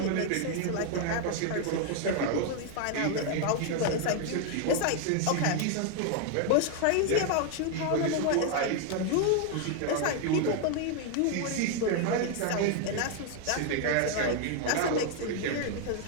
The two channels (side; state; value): both; different; correlation 0.00